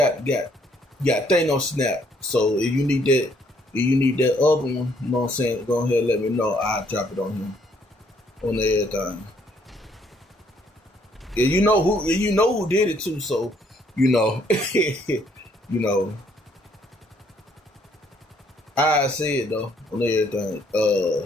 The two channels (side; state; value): both; normal; correlation 0.67